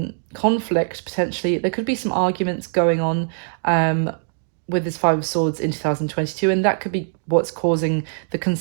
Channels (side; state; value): left; silent; digital silence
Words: conflict potentially. There could be some arguments going on with this Five of Swords in 2022, and that could be what's causing the